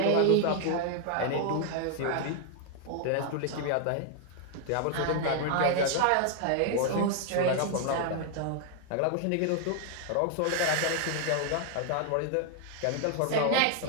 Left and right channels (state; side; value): different; both; correlation 0.00